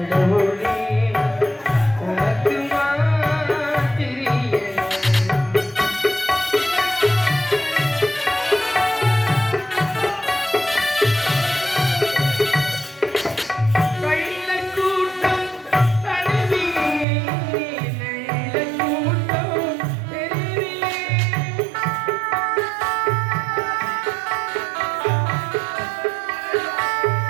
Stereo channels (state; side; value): drops out; left; at 17.1 s